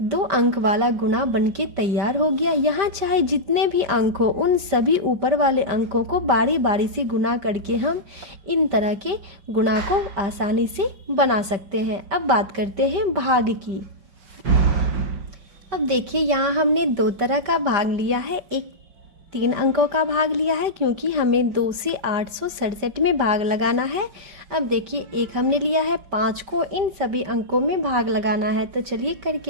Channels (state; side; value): late; left; 5.1 ms